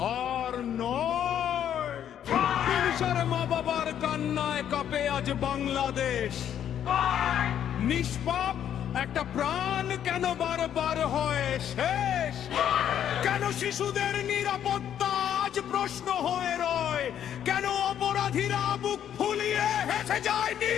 আর নয় হিংসার মা বাবার কান্নায় কাঁপে আজ বাংলাদেশ। নিষ্পাপ একটা প্রাণ কেন বারবার হয় শেষ? কেন শিশুদের নিরাপত্তা আজ প্রশ্ন হয়ে রয়? কেন অপরাধীরা বুক ফুলিয়ে হেসে যায়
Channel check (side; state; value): right; quieter; 9.9 dB